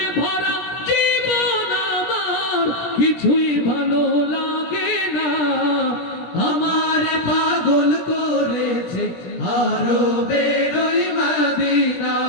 ভরা জীবন আমার, কিছুই ভালো লাগে না। আমার পাগল করেছে আরবের ওই মদিনা।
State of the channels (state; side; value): late; right; 17 ms